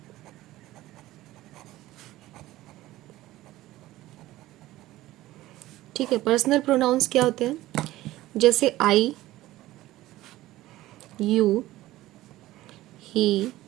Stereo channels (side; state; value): left; quieter; 16.3 dB